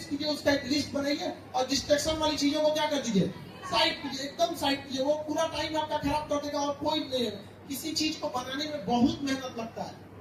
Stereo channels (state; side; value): identical; both; correlation 1.00